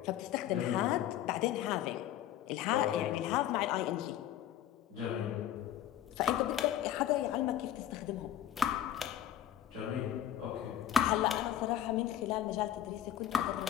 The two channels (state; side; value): quieter; right; 11.2 dB